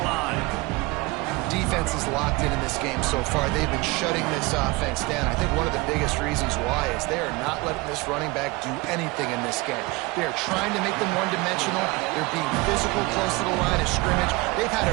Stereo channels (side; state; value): left; quieter; 23.8 dB